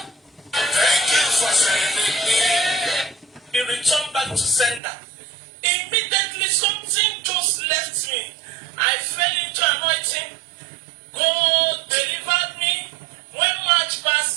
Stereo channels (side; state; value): left; drops out; at 4.8 s